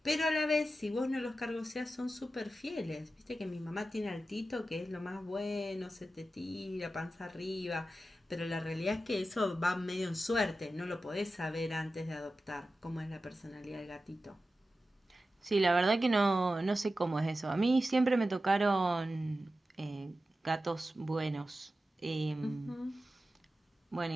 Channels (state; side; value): normal; both; correlation 0.93